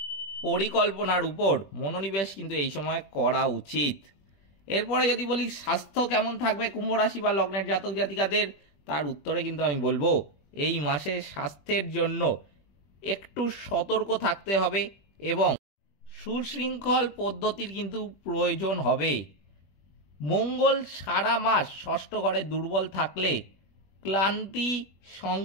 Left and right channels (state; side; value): late; right; 21 ms